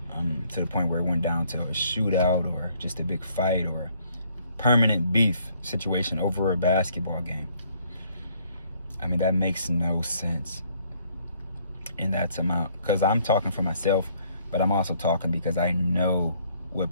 to the point where it went down to a shootout or just a big fight or permanent beef situation over a basketball game. I mean, that makes no sense in that amount, because I'm talking for myself, but I'm also talking because I know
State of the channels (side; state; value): both; inverted; correlation -0.65